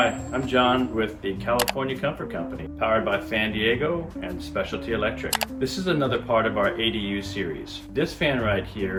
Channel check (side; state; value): both; identical; correlation 1.00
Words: I'm John with the California Comfort Company, powered by Fan Diego and Specialty Electric. This is another part of our ADU series. This fan right